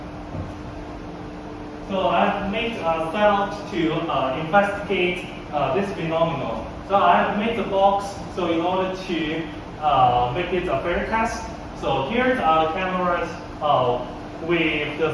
so I've made a setup to investigate this phenomenon. So I've made the box so in order to make it a fair test. So here are the cameras with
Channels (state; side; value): identical; both; correlation 1.00